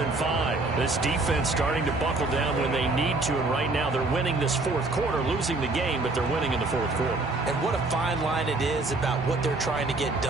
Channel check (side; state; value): left; quieter; 3.2 dB